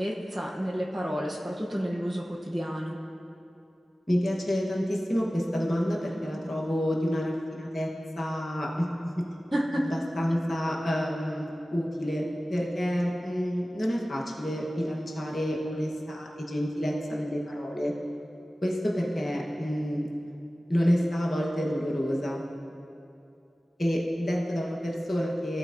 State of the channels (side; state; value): both; normal; correlation 0.96